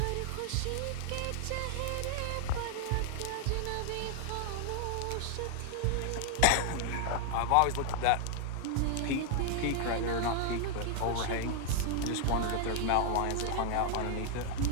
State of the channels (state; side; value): different; both; correlation 0.00